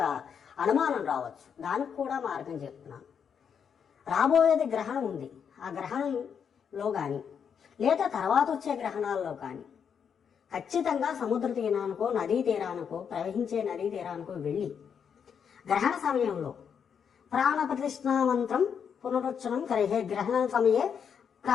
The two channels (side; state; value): right; quieter; 7.3 dB